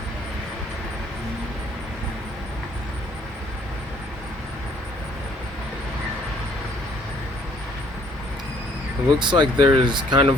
It looks like there's kind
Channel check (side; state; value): both; normal; correlation 0.62